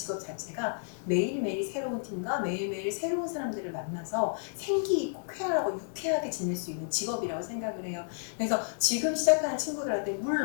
자체가 매일매일 새로운 팀과 매일매일 새로운 사람들을 만나서 생기 있고 쾌활하고 유쾌하게 지낼 수 있는 직업이라고 생각을 해요. 그래서 지금 시작하는 친구들한테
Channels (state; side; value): silent; right; digital silence